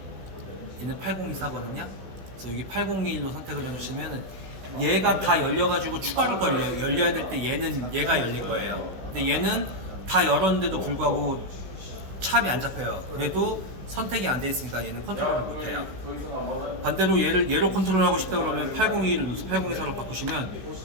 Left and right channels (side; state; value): left; late; 16 ms